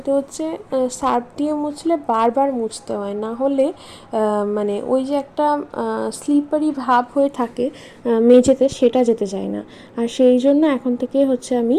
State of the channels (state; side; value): identical; both; correlation 1.00